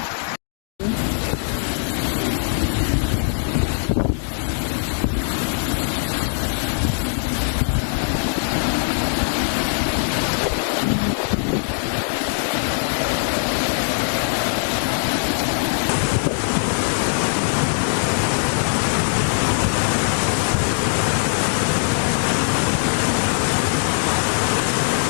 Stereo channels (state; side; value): silent; right; digital silence